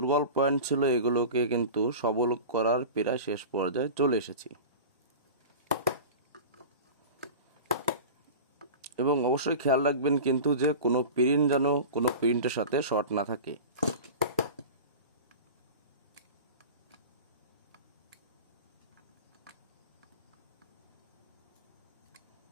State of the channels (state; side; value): inverted; both; correlation -0.33